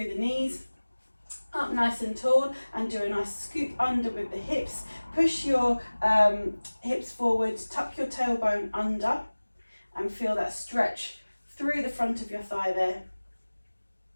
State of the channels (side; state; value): both; inverted; correlation -1.00